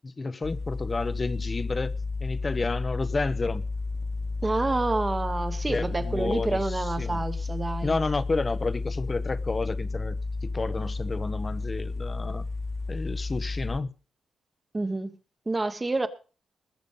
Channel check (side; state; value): both; normal; correlation 0.95